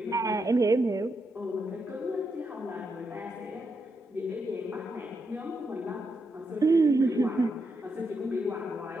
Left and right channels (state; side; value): normal; both; correlation 0.83